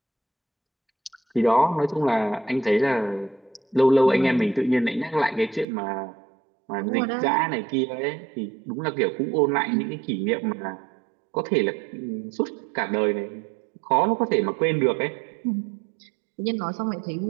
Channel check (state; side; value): drops out; left; at 5.7 s